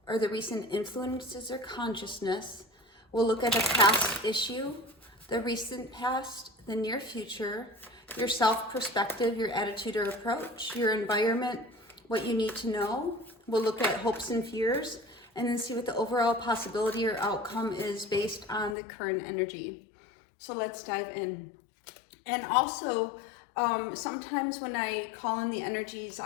or the recent influences or consciousness. We'll look at a past issue, the recent past, the near future, your self-perspective, your attitude or approach, your environment, what you need to know. We'll look at hopes and fears, and then see what the overall possibility or outcome is based on the current energy. So let's dive in. And also, sometimes when I call in the energies,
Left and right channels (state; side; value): drops out; right; at 18.8 s